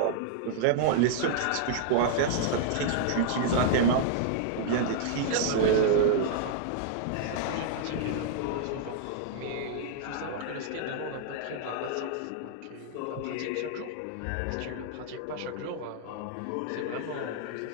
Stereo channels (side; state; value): both; different; correlation -0.01